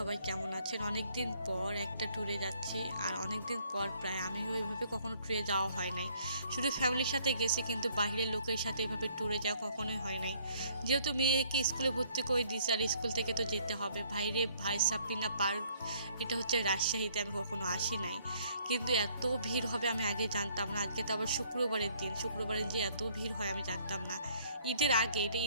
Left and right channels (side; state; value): both; inverted; correlation -0.62